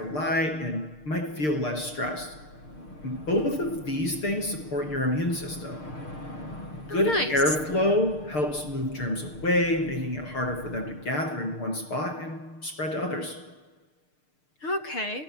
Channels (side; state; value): right; late; 6.6 ms